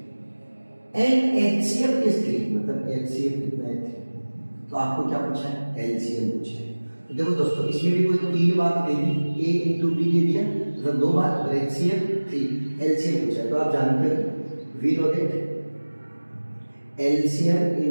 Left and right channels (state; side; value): inverted; both; correlation -1.00